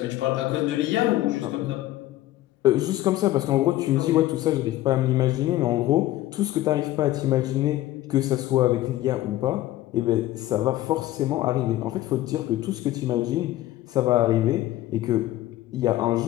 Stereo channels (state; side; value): quieter; right; 15.3 dB